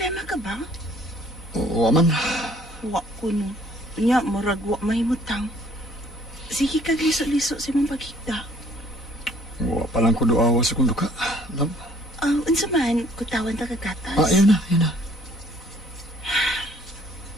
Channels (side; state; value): both; normal; correlation 0.59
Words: ka ba? Oo, man. Wa ko no. Nya, murag wa mahimutang. Sige ka liso-liso sa mong pagkita. Wa pa lang ko doawa sa kundo ka. Love? Unsa man, kutawan ta kagatas. Ayan na.